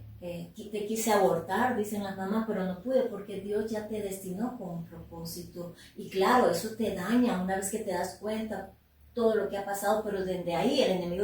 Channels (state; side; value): identical; both; correlation 1.00